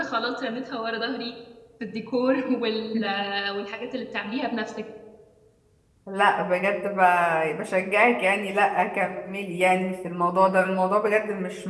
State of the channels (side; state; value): both; identical; correlation 1.00